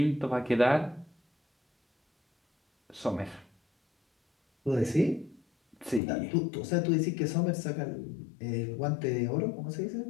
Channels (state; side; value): drops out; right; at 6.0 s